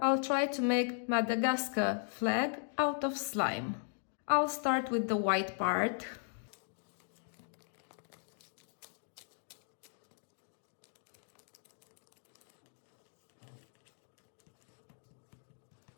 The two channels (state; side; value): silent; right; 53 dB below the other